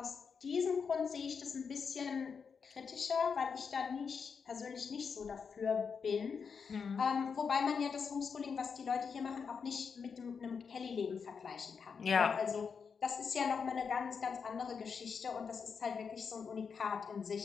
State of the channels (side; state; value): right; quieter; 6.0 dB